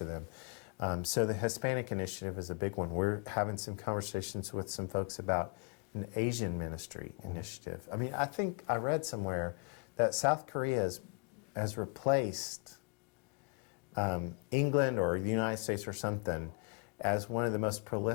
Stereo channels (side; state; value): right; quieter; 38.1 dB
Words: them. So the Hispanic initiative is a big one. We're having some conversations with some folks about an Asian ministry initiative. I mean, I think I read somewhere that South Korea has replaced England or the United States or something as one of the most